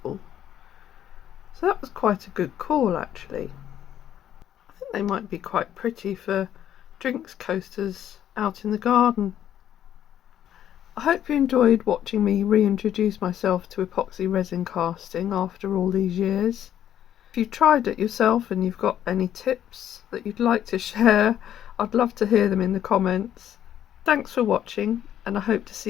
So that was quite a good call actually. I think they might be quite pretty for drinks coasters out in the garden. I hope you enjoyed watching me reintroduce myself to epoxy resin casting after all these years. If you've tried it yourself and you've got any tips that you'd like to share, I'd love to hear them in the comments. Thanks for watching, and I hope to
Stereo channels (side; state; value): right; quieter; 10.6 dB